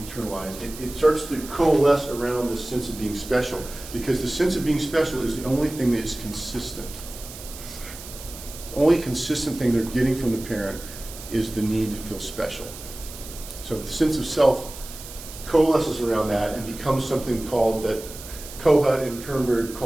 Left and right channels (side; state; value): right; noise; hiss, 14 dB below the sound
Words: It starts to coalesce around this sense of being special, because the sense of being special is the only thing that is consistent. The only consistent thing they're getting from the parent is the need to feel special. So the sense of self coalesces around that and becomes something called that Kohut and Kernberg